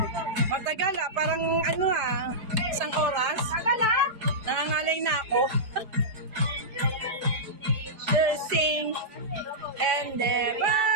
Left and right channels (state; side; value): late; left; 4.7 ms